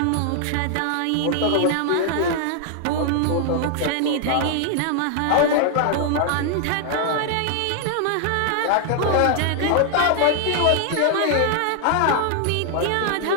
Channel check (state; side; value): different; both; correlation 0.00